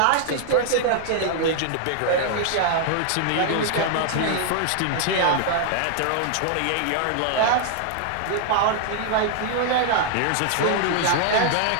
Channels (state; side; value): different; both; correlation 0.00